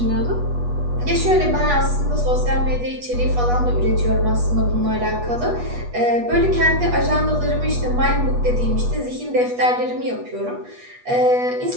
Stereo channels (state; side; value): late; left; 8.2 ms